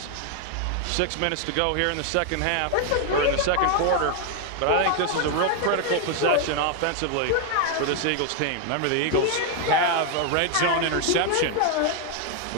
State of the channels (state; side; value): different; both; correlation 0.00